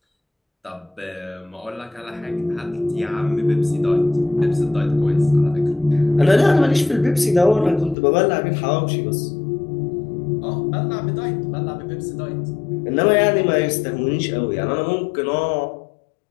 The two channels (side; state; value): right; drops out; at 8.0 s